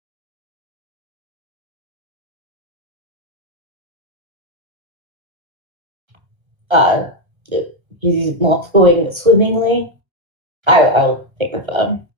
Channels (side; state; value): left; late; 1.2 ms